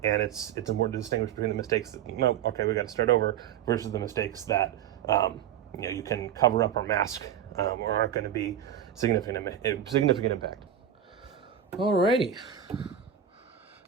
and it's important to distinguish between the mistakes that, no, okay, we got to start over, versus the mistakes that you can cover up or mask, or aren't going to be significant impact. Alrighty,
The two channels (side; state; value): left; quieter; 9.4 dB